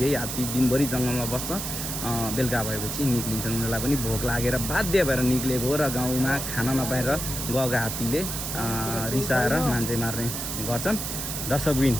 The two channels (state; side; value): noise; right; hiss, 4 dB below the sound